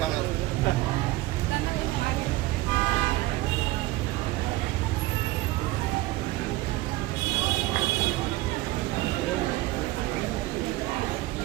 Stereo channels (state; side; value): quieter; left; 18.4 dB